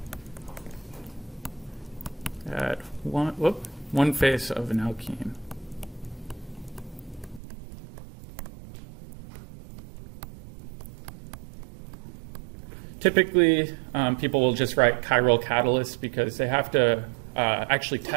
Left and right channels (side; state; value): left; drops out; at 7.4 s